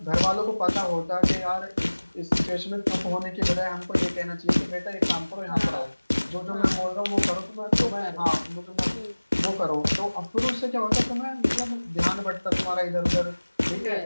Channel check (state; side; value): inverted; both; correlation -1.00